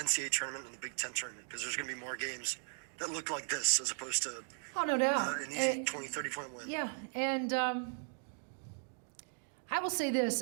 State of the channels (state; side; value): silent; left; 53 dB below the other